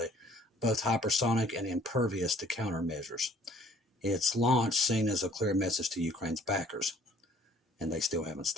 both hypersonic and impervious to countermeasures. Its launch seen as a clear message to Ukraine's backers, and they still haven't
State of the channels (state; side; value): normal; both; correlation 0.57